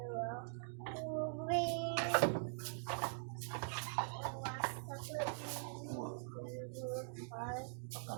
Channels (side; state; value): left; silent; digital silence